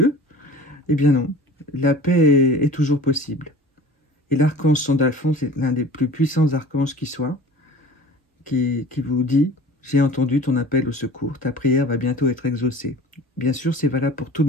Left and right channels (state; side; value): normal; both; correlation 0.42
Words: Eh bien non, la paix est toujours possible. Et l'archange Sandalphon, c'est l'un des plus puissants archanges qui soit, qui vous dit « J'ai entendu ton appel au secours, ta prière va bientôt être exaucée ». Bien sûr, c'est valable pour tout le